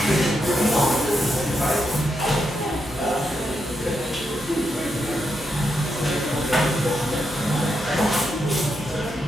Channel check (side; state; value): both; normal; correlation 0.83